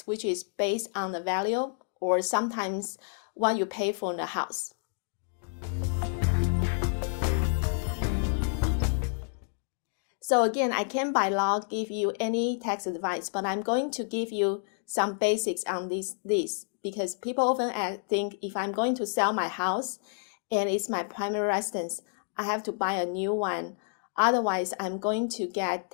which is based on the value or sometimes what you pay for the house. So again, I can't by law give you any tax advice, but I'm going to give you some basics on this because people often think if I'm going to sell my house and it's my primary residence, I have to buy a new one. Otherwise, I'm going to get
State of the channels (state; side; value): silent; right; digital silence